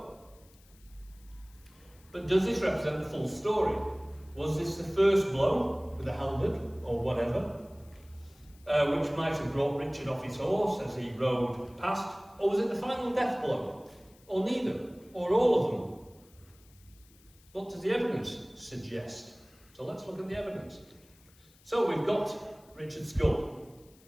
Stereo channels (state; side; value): noise; left; hiss, 28 dB below the sound